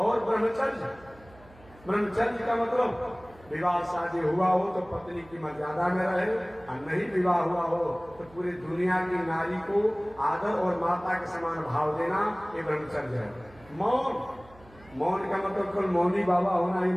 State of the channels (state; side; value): noise; right; hum, 24 dB below the sound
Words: ब्रह्मचर्य, ब्रह्मचर्य का मतलब विवाह शादी हुआ हो तो पत्नी की मर्यादा में रहे, और नहीं विवाह हुआ हो तो पूरी दुनिया की नारी को आदर और माता के समान भाव देना, ये ब्रह्मचर्य है। मौन, मौन का मतलब केवल मौनी बाबा होना ही